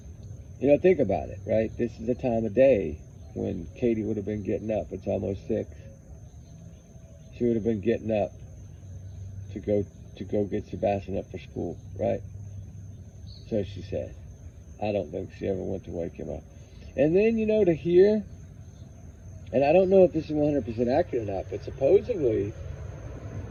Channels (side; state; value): both; identical; correlation 1.00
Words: You know, think about it, right? This is the time of day when Katie would have been getting up. It's almost 6. She would have been getting up to go get Sebastian up for school, right? So she said. I don't think she ever went to wake him up. And then, you know, to hear, and I don't know if this is 100% accurate or not, but supposedly